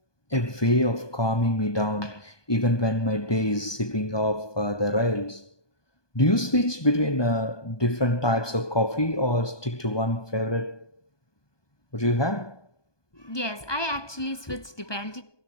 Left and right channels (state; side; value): late; right; 1.2 ms